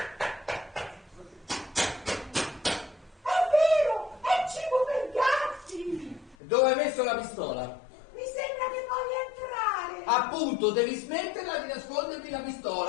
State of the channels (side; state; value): right; drops out; at 6.4 s